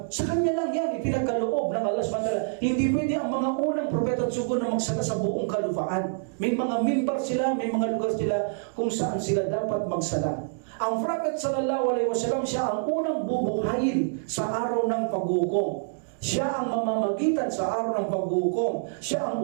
sa kanya lang yan, ipinagkaloob ng Allah subhanahu wa ta'ala. Hindi pwede ang mga unang propeta at sugo na magsala sa buong kalupaan. May mga mimbar sila, may mga lugar sila kung saan sila dapat magsala. Ang Prophet sallallahu alaihi wasallam, siya ang unang bubuhayin sa araw ng paghukom. Siya ang mamamagitan sa araw ng paghukom. Siya ang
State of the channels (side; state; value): left; silent; digital silence